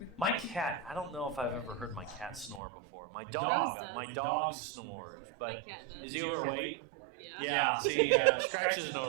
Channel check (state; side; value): drops out; left; at 2.6 s